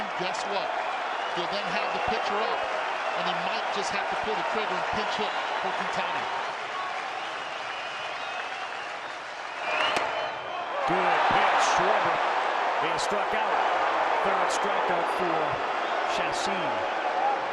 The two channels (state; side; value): identical; both; correlation 1.00